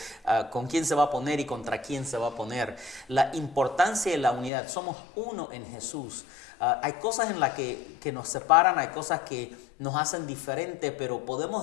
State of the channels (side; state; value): right; drops out; at 4.5 s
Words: con quién se va a poner y contra quién se va a poner. La importancia de la unidad, somos uno en Jesús. Hay cosas en las que nos separan, hay cosas que nos hacen diferente, pero